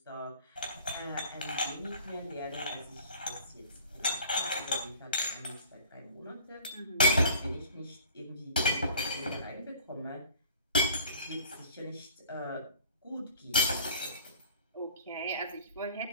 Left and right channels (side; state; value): both; inverted; correlation -0.49